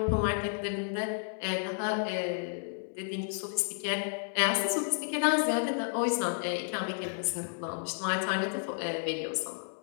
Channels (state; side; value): silent; right; digital silence